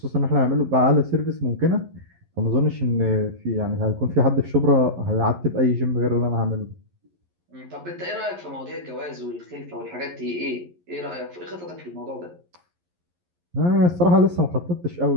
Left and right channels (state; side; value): late; left; 11 ms